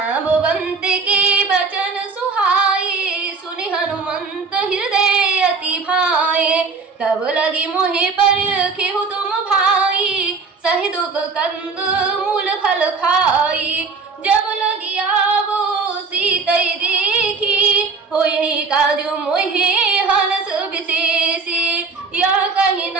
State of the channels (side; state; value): left; quieter; 4.6 dB